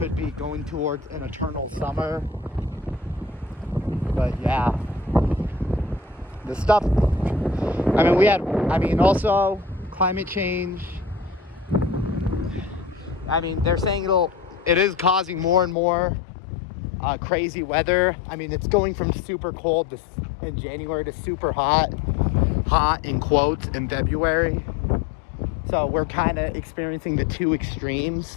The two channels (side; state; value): right; drops out; at 15.8 s